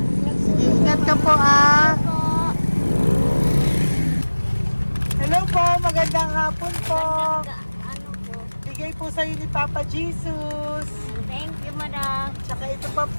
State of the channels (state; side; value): inverted; both; correlation -1.00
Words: Sige, ingat ka po, ah. Hello po, magandang hapon po. Ano po? Bigay po sa'yo ni Papa Jesus. Thank you, madam. Tsaka ito pa